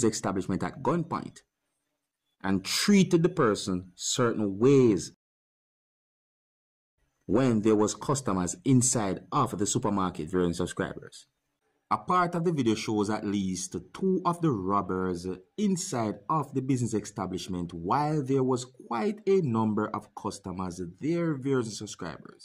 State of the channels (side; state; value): both; identical; correlation 1.00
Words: establishment at gunpoint and treated the person certain ways. when there was customers inside of the supermarket viewing subscribers. A part of the video shows at least 2 of the robbers inside of the business establishment while there was quite a number of customers there viewing